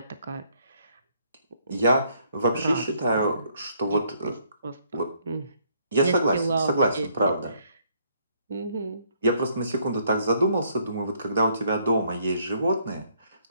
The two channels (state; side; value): inverted; both; correlation -0.68